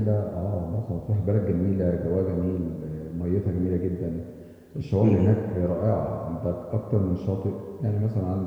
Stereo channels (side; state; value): both; identical; correlation 1.00